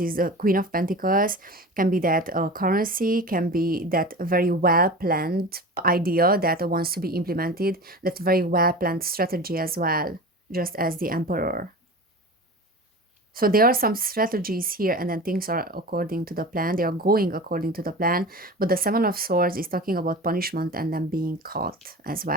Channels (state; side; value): normal; both; correlation 0.33